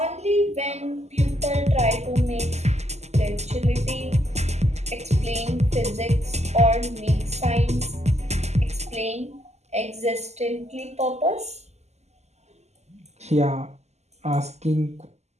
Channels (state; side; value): late; left; 0.32 ms